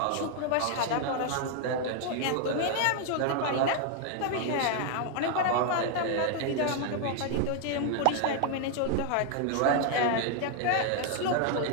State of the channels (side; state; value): both; different; correlation 0.00